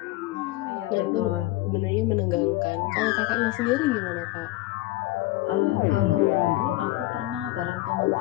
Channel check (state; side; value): quieter; right; 18.3 dB